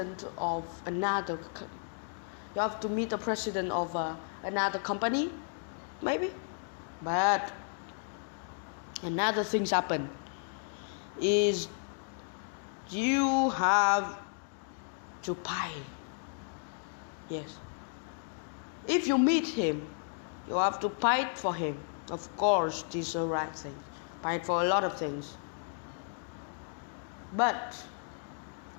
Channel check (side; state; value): right; silent; 55 dB below the other